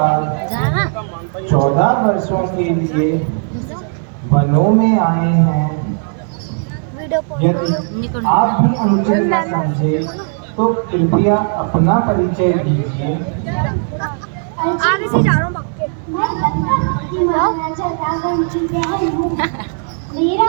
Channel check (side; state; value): left; silent; 56 dB below the other